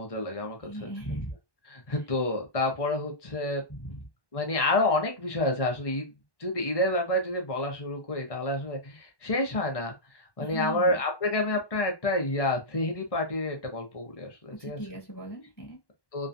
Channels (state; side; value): late; right; 1.1 ms